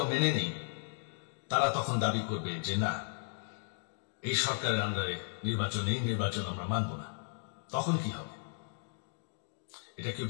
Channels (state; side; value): silent; right; digital silence